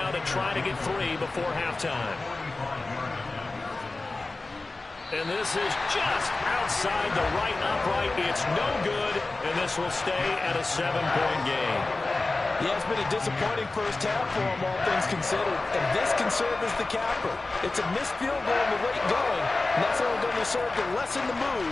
to try to get 3 before halftime. And this is just outside the right upright. It's no good, and this will stay at a 7-point game. Yeah, it's been a disappointing first half for him, all things considered. And this can serve as the capper. It's a missed field goal in the late going, and that's only going to serve to lessen the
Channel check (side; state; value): right; quieter; 3.3 dB